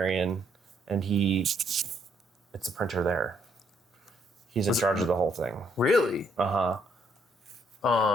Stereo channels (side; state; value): both; normal; correlation 0.70